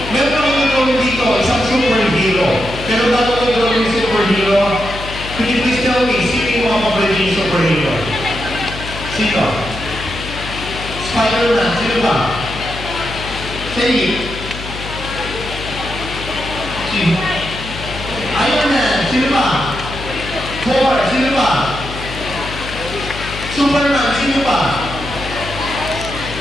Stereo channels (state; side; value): noise; left; hum, 10 dB below the sound